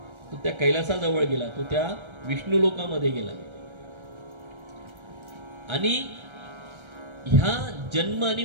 तो त्या कैलासाजवळ गेला, तो त्या विष्णू लोकामध्ये गेला. आणि ह्या जन्म आणि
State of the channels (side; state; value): left; late; 1.3 ms